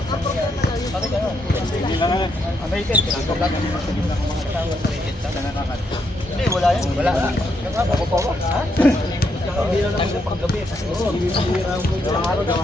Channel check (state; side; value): normal; both; correlation 0.78